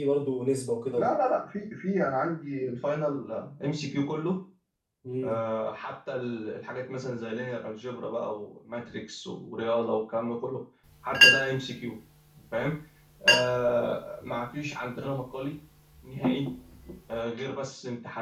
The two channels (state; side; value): identical; both; correlation 1.00